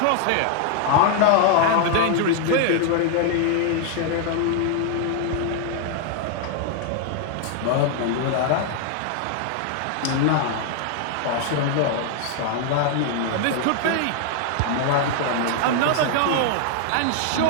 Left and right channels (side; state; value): both; different; correlation 0.00